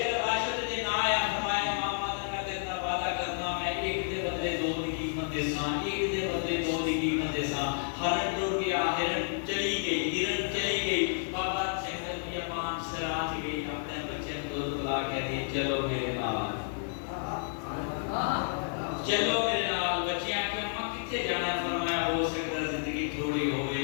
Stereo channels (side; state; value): right; silent; digital silence